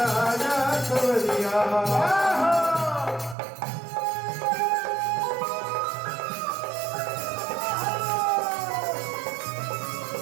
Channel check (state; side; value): drops out; left; at 3.4 s